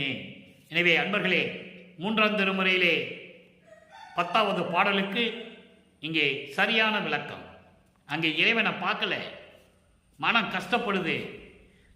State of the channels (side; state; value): both; identical; correlation 1.00